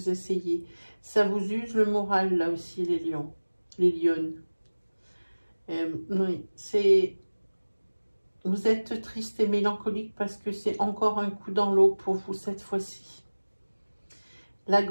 essayez. Ça vous use le moral, là aussi, les lions, les lionnes. Oui, c'est... Vous êtes triste et mélancolique parce que c'est encore un coup dans l'eau pour vous cette fois-ci. Là,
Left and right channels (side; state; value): both; inverted; correlation -1.00